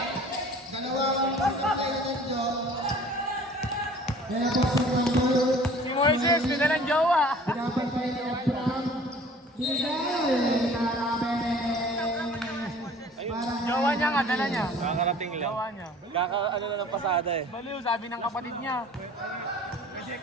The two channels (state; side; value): normal; both; correlation 0.49